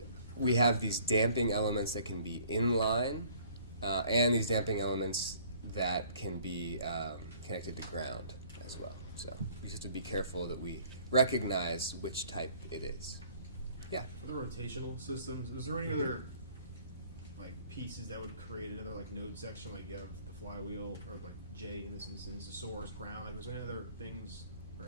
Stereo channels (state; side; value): inverted; both; correlation -0.56